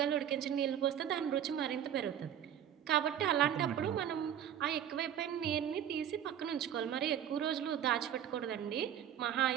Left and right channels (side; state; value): left; quieter; 9.8 dB